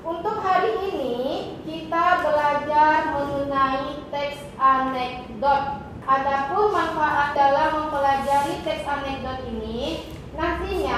Untuk hari ini kita belajar mengenai teks anekdot. Adapun manfaat dalam mempelajari teks anekdot ini,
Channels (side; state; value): both; identical; correlation 1.00